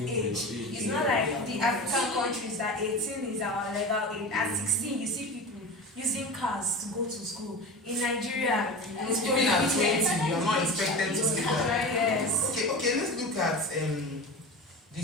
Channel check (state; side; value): normal; both; correlation 0.30